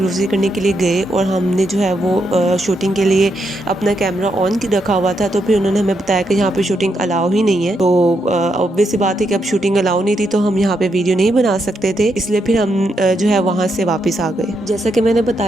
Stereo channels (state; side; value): normal; both; correlation 0.80